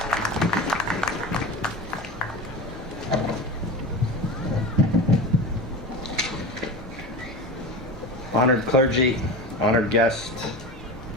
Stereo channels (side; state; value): both; normal; correlation 0.28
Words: Honored clergy, honored guests,